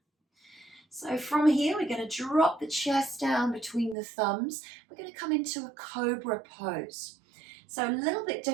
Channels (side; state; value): left; drops out; at 4.0 s